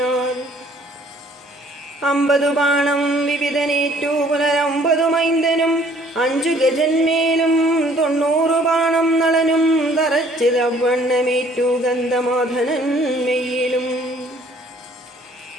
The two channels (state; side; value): normal; both; correlation 0.58